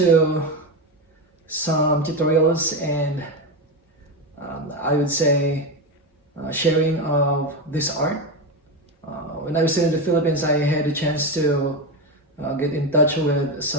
some tutorials and I would say sharing of this art. When I was in the Philippines, I had a chance to get in touch with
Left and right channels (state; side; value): normal; both; correlation 0.15